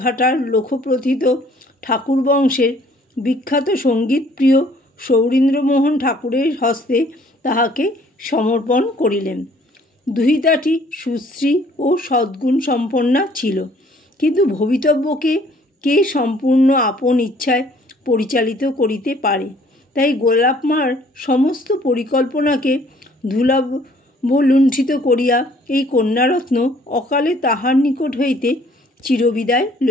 ঘাটার লোকপ্রথিত ঠাকুর বংশের বিখ্যাত সঙ্গীতপ্রিয় সৌরীন্দ্রমোহন ঠাকুরের হস্তে তাহাকে সমর্পণ করিলেন। দুহিতাটি সুশ্রী ও সদ্গুণ সম্পন্না ছিল, কিন্তু ভবিতব্যকে কে সম্পূর্ণ আপন ইচ্ছায় পরিচালিত করিতে পারে? তাই গোলাপ মার সমস্ত পরিকল্পনাকে ধূলাবলুণ্ঠিত করিয়া এই কন্যারত্ন অকালে তাহার নিকট হইতে চিরবিদায়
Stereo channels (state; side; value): normal; both; correlation 0.59